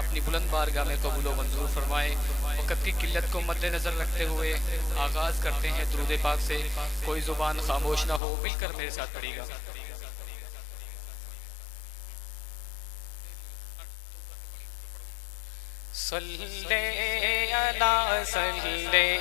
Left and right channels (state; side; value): drops out; right; at 8.2 s